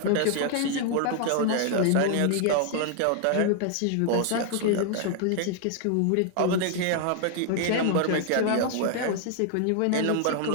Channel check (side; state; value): both; different; correlation 0.00